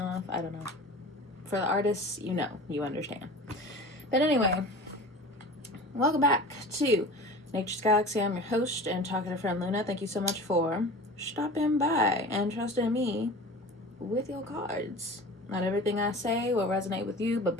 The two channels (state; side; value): normal; both; correlation 0.37